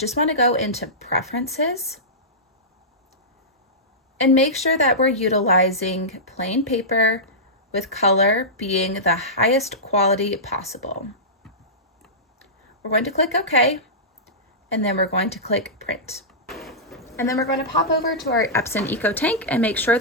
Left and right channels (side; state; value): both; normal; correlation -0.16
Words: want to go into Preferences and make sure that we're utilizing plain paper with color being the highest quality possible. We're going to click OK, and then we're going to click Print. And then we're going to pop over to our Epson Eco Tank and make sure